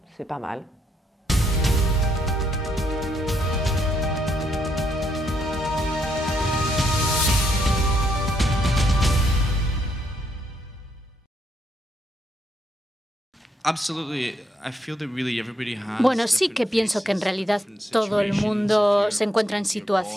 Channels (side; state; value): both; normal; correlation 0.76